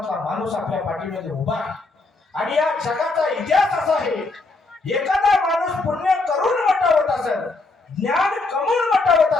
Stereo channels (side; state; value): right; quieter; 3.5 dB